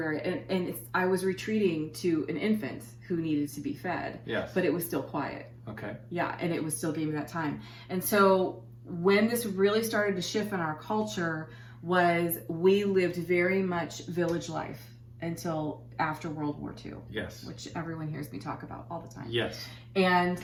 I was retreating to an infant who needed to be fed. Yes. But it was still quiet. Okay. Yeah. And it was still giving me that time. And so when this really started to shift in our culture was we lived very much village life until after World War II. Yes. Which everyone hears me talk about all the time. Yes. And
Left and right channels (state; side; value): identical; both; correlation 1.00